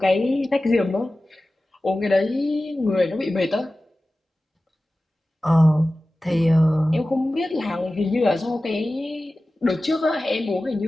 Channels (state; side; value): normal; both; correlation 0.96